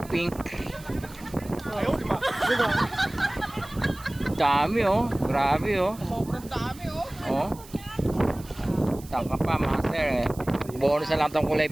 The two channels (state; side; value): noise; right; hiss, 20 dB below the sound